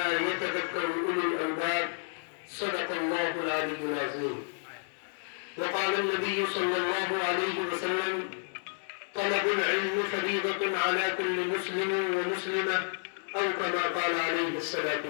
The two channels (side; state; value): right; silent; 57 dB below the other